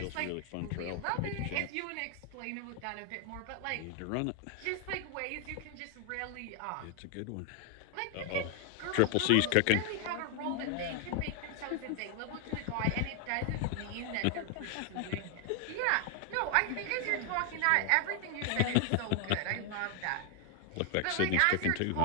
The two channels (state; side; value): different; both; correlation 0.00